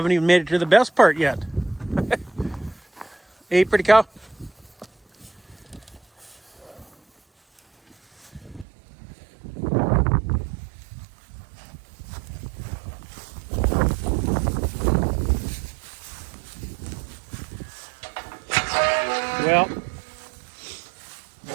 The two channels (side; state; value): left; drops out; at 8.7 s